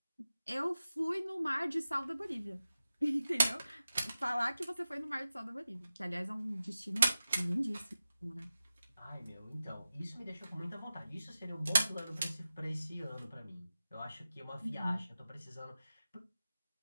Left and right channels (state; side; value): inverted; both; correlation -0.94